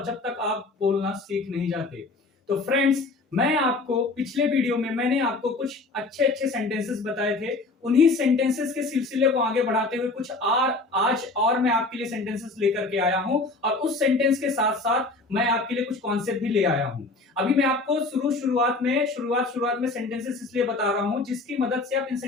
जब तक आप बोलना सीख नहीं जाते। तो फ्रेंड्स, मैं आपको पिछले वीडियो में मैंने आपको कुछ अच्छे अच्छे सेंटेंसेस बताए थे। उन्हीं सेंटेंसेस के सिलसिले को आगे बढ़ाते हुए कुछ आज और मैं आपके लिए सेंटेंसेस लेकर के आया हूं और उस सेंटेंस के साथ साथ मैं आपके लिए कुछ कॉन्सेप्ट भी ले आया हूं। अभी मैं आपको शुरुआत में सेंटेंसेस इसलिए बता रहा हूं जिसकी मदद से आप इन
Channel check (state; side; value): quieter; right; 3.4 dB